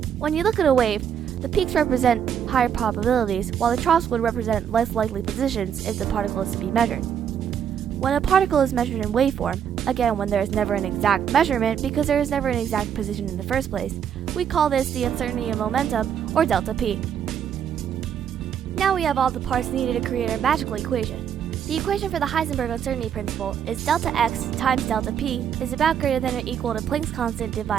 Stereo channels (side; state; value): left; quieter; 8.5 dB